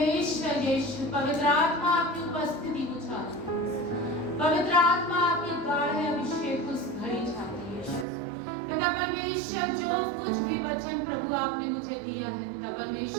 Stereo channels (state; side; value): drops out; left; at 8.1 s